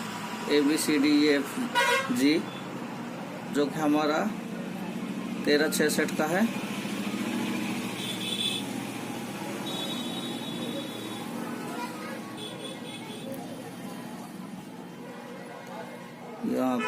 ABCDEFG, जो कि हमारा 1366 का है। यहाँ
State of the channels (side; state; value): both; identical; correlation 1.00